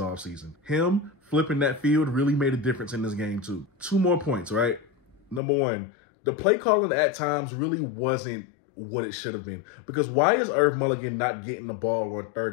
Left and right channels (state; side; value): drops out; right; at 5.4 s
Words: Him flipping that field really made a difference in this game too. 2 more points, right? Number 1, the play calling at times really wasn't what it should have been. Because why is Irv Mulligan not getting the ball on 3rd